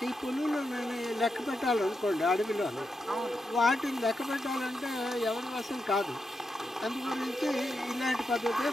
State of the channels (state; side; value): normal; both; correlation 0.86